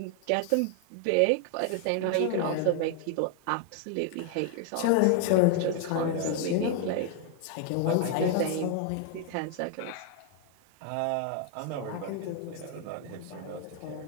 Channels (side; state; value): both; different; correlation 0.00